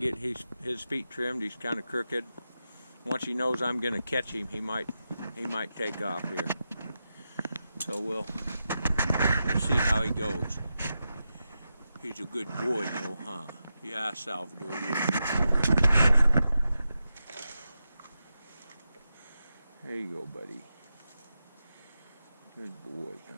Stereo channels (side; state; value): both; inverted; correlation -0.89